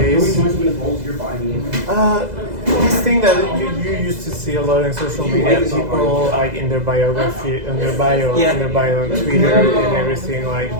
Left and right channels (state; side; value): late; left; 2.0 ms